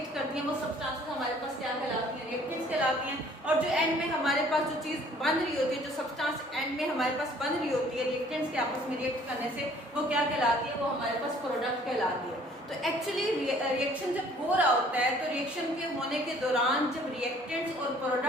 करती हैं वो सब्सटेंसेस हमारे पास क्या कहलाती हैं? रिएक्टेंट्स कहलाती हैं। और जो एंड में हमारे पास जो चीज बन रही होती है, जो सब्सटेंस एंड में हमारे पास बन रही होती है रिएक्टेंट्स के आपस में रिएक्ट करने से, वो क्या कहलाती है? वो हमारे पास प्रोडक्ट कहलाती है। तो एक्चुअली रिएक्शन जब हो रहा होता है तो रिएक्शन के होने के दौरान जब रिएक्टेंट्स और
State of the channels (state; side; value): normal; both; correlation 0.56